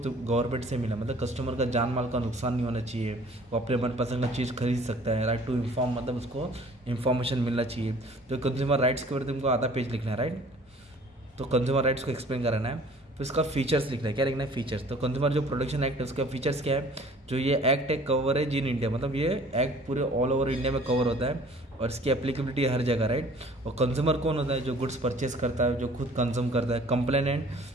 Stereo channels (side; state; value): both; normal; correlation 0.51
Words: गवर्नमेंट से मिला, मतलब कस्टमर का जान माल का नुकसान नहीं होना चाहिए, वो अपने मनपसंद का चीज़ खरीद सकता है। राइट टू इन्फॉर्म, मतलब उसको इन्फॉर्मेशन मिलना चाहिए। तो कंज्यूमर राइट्स के बारे में तुमको आधा पेज लिखना है, राइट। तो कंज्यूमर राइट्स को एक्सप्लेन कराना है। तो इसका फीचर्स लिखना है, क्या लिखना है, फीचर्स। तो कंज्यूमर जो प्रोटेक्शन एक्ट है उसका फीचर्स क्या है, जो ये एक्ट है कवरेज इन इंडिया, मतलब ये एक्ट पूरे ऑल ओवर इंडिया में कवर होता है और इसकी एप्लीकेबिलिटी हर जगह, राइट। और कंज्यूमर कौन होता है, जो गुड्स परचेज करता है, जो खुद कंज्यूम करता है। कंप्लेनेंट